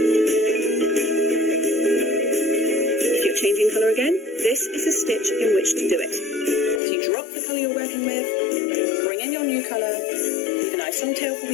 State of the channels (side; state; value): right; drops out; at 6.8 s